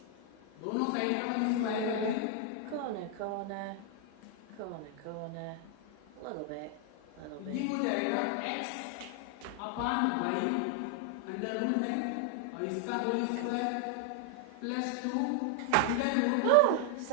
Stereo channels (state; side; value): different; both; correlation 0.00